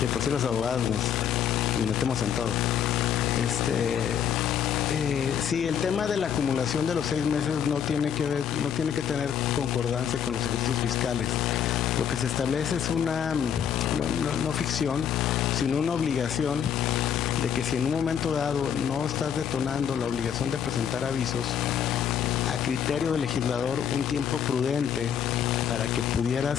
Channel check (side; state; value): right; quieter; 8.5 dB